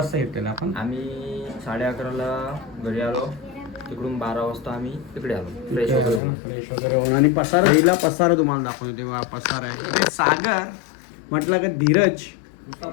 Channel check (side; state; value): right; drops out; at 6.2 s